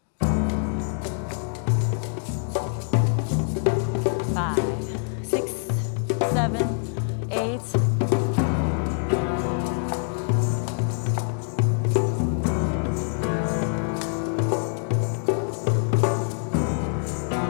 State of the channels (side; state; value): right; silent; 57 dB below the other